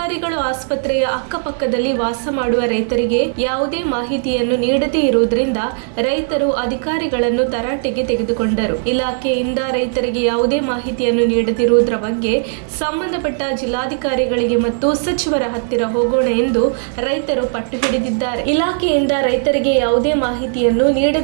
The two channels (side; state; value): left; silent; digital silence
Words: ಆಸ್ಪತ್ರೆಯ ಅಕ್ಕಪಕ್ಕದಲ್ಲಿ ವಾಸ ಮಾಡುವ ರೈತರಿಗೆ ಯಾವುದೇ ಮಾಹಿತಿಯನ್ನು ನೀಡದೇ ಇರುವುದರಿಂದ ರೈತರು ಅಧಿಕಾರಿಗಳನ್ನು ತರಾಟೆಗೆ ತೆಗೆದುಕೊಂಡರು. ಇಲಾಖೆಯಿಂದ ರೈತರಿಗೆ ಯಾವುದೇ ಮಾಹಿತಿಯನ್ನು ನೀಡದಿರುವುದರ ಬಗ್ಗೆ ಸಂಬಂಧಪಟ್ಟ ಜಿಲ್ಲಾಧಿಕಾರಿಗಳಿಗೆ ಮತ್ತು ಸಚಿವರ ಹತ್ತಿರ ಹೋಗೋಣ ಎಂದು ರೈತರು ಪಟ್ಟು ಹಿಡಿದಿದ್ದಾರೆ. ಇಲಾಖೆಯಿಂದ ರೈತರಿಗೆ ಯಾವುದೇ ಮಾಹಿತಿಯನ್ನು